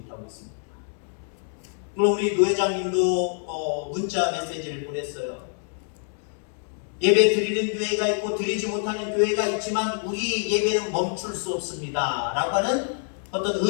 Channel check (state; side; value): silent; right; 57 dB below the other